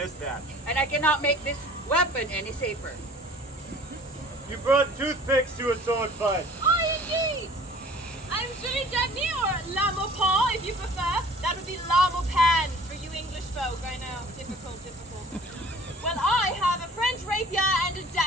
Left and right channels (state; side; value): normal; both; correlation 0.48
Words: that. And I cannot make this weapon any safer. You brought toothpicks to a sword fight. Oh, indeed! I'm Julie Dagny, or Lamopin, if you prefer. That would be Lamopan for you English folk. I know, difficult. Well, I have a French rapier and a